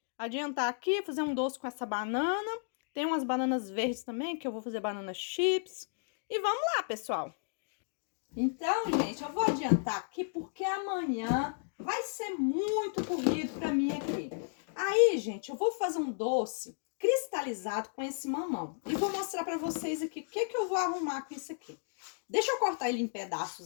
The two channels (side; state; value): right; silent; digital silence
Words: Adiantar aqui, fazer um doce com essa banana. Tem umas bananas verdes também, que eu vou fazer banana chips. E vamos lá, pessoal. Então, gente, eu vou adiantar aqui porque amanhã vai ser muito corrido pra mim aqui. Aí, gente, eu vou fazer um doce cristalizado com esse mamão. E vou mostrar pra vocês aqui o que eu vou arrumar com isso aqui. Deixa eu cortar ele em